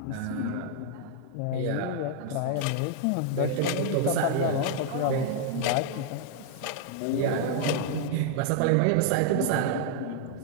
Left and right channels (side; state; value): both; different; correlation 0.00